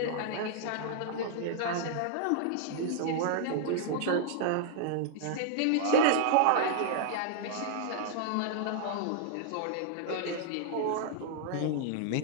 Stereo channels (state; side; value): different; both; correlation -0.01